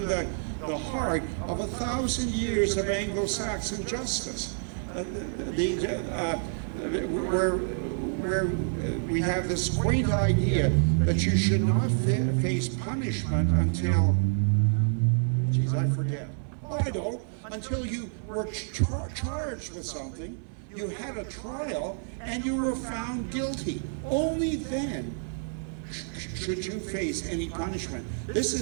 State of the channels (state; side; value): silent; left; 59 dB below the other